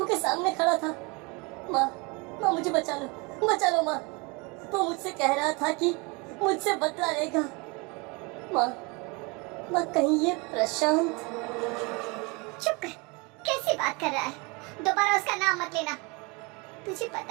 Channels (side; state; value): left; quieter; 28.4 dB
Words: के सामने खड़ा था। माँ मुझे बचा लो माँ। वो मुझसे कह रहा था कि मुझसे बदला लेगा। माँ कहीं ये प्रशांत। चुप कर, कैसी बात कर रहा है? दोबारा उसका नाम मत लेना। तुझे